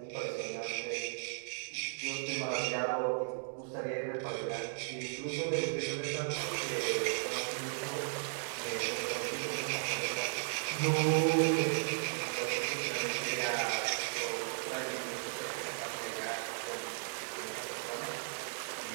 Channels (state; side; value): silent; left; digital silence